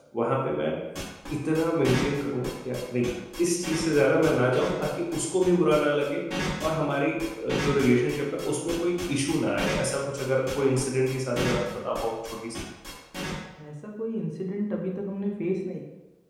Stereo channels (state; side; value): identical; both; correlation 1.00